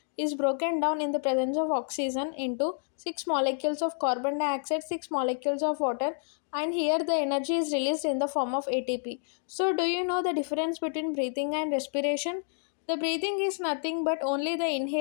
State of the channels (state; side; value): silent; right; digital silence